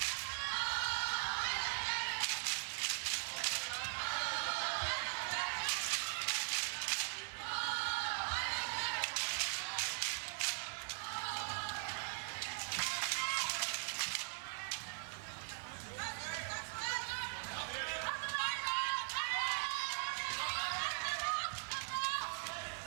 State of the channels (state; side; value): silent; left; 51 dB below the other